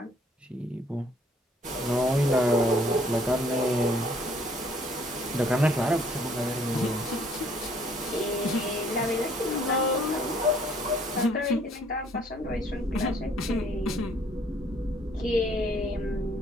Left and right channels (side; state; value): both; normal; correlation 0.61